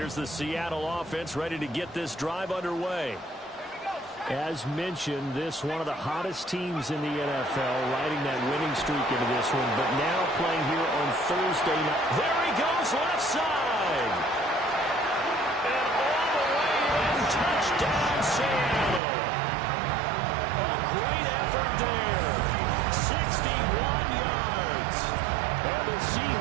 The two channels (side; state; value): left; drops out; at 19.0 s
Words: the Seattle offense ready to get this drive underway. As mentioned, this one of the hottest teams in the NFL, riding that winning streak into this one, but now playing here on Thursday night. There he goes, left side. And all the way in, touchdown Seattle. A great effort there. 61 yards. And the